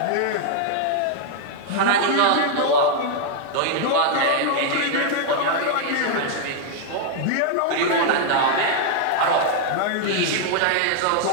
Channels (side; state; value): both; different; correlation 0.00